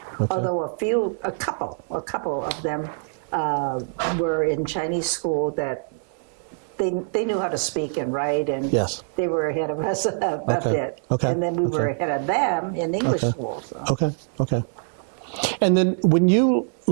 although a couple of them were in Chinese school that they knew how to speak and write, and Yes. they were ahead of us a bit. Okay. And then we were ahead of them in English school. So. Okay. And then when you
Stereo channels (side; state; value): left; silent; digital silence